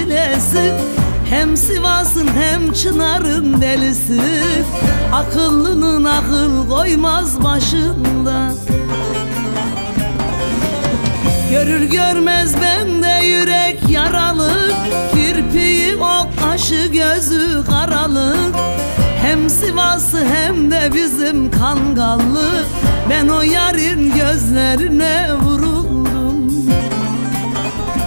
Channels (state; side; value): inverted; both; correlation -1.00